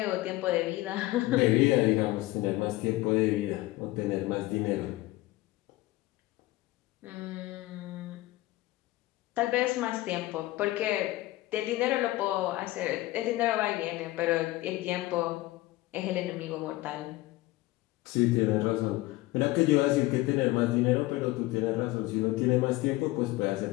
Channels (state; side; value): quieter; right; 18.4 dB